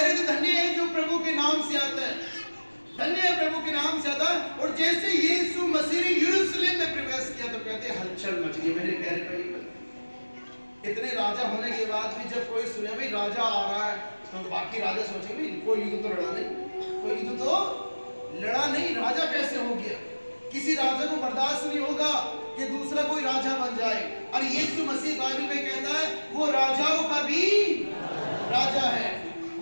थे, धन्य है जो प्रभु के नाम से आता है, धन्य है प्रभु के नाम से आता है। और जैसे यीशु मसीह ने यरूशलेम में प्रवेश किया तो कहते हलचल मच गई मेरे प्यारे भाई। इतने राजा होने के बाद भी जब कोई सुने भाई राजा आ रहा है, तो बाकी राजा सोचे भाई कोई युद्ध तो लड़ा नहीं, कोई युद्ध तो लड़ा नहीं, राजा कैसे हो गया। किसी राजा को बर्दाश्त नहीं होगा कि दूसरा कोई राजा बन जाए। और यीशु मसीह बाइबल में कहता है वो राजाओं का भी राजा है,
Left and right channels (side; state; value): both; inverted; correlation -1.00